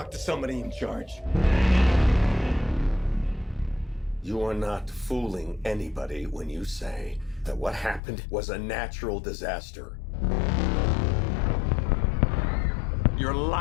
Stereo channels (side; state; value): right; drops out; at 8.0 s